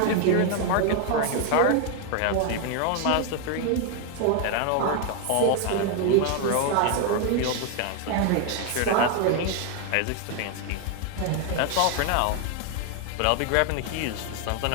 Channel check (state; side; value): different; both; correlation 0.01